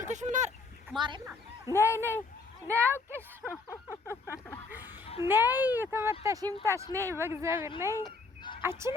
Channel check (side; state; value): right; quieter; 4.0 dB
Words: ምን ማርያም ነይ አውቄሽ ነይ ተመታሽ ይምታሽ። ነይ በእግዚአብሔር ነይ። አንቺ